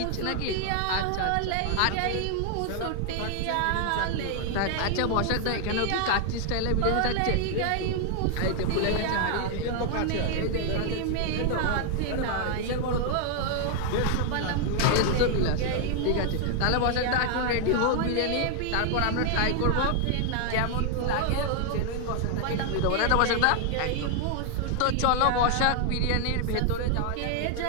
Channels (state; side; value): different; both; correlation 0.00